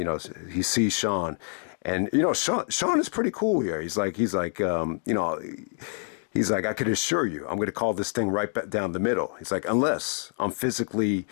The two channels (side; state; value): right; silent; 58 dB below the other